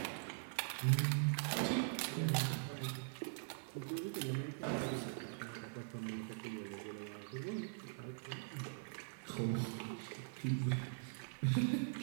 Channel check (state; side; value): silent; left; digital silence